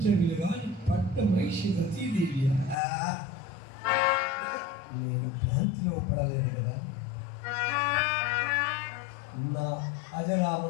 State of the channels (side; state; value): right; drops out; at 2.8 s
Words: గాని పట్ట మహిషి రతీదేవి నేను భ్రాంతిలో పడలేదు కదా. నా